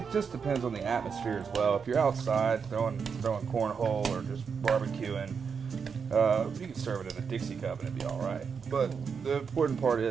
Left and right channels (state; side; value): quieter; left; 6.1 dB